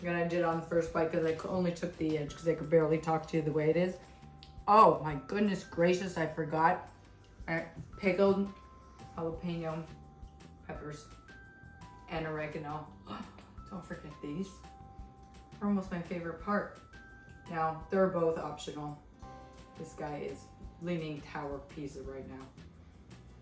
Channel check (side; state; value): both; identical; correlation 1.00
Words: I did on the first bite because I only took the edge because I could barely talk to you the way it is. Oh my goodness gracious, I forgot. Pickled jalapeno peppers and oregano. Don't forget these. They're almost my favorite part. Now, they're both optional. This guy is leaning tower pizza right now.